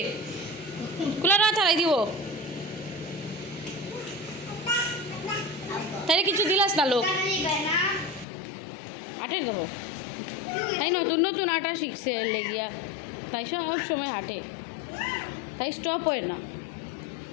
কুলারও আথারাই দিব তাইরে কিছু দিলাস না লোক আটের দেখো তাই নতুন নতুন আটা শিখছে লেগিয়া তাই সব সময় হাঁটে তাই স্টপ হয় না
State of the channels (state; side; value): drops out; right; at 8.2 s